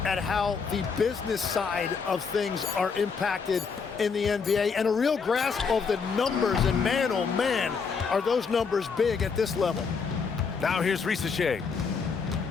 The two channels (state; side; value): quieter; right; 5.5 dB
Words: at how the business side of things are impacted in the NBA and a real grasp of the numbers. And man, oh man, are those numbers big at this level. Now here's Risacher.